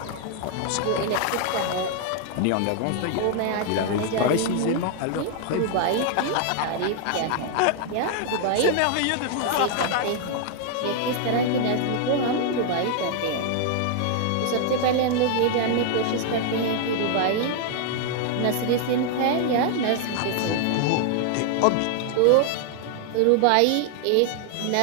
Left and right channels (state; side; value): different; both; correlation 0.00